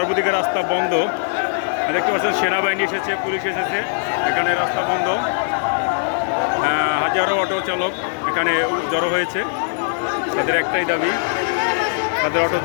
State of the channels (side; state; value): right; silent; digital silence